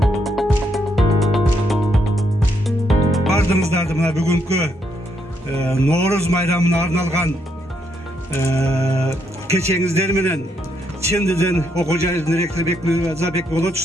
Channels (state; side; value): normal; both; correlation 0.76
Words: Бардыңыздарды мына бүгүнкү Ноорuz майрамына арналган кечеңиздер менен чындыдын окуу жайынын ректору Бекмырза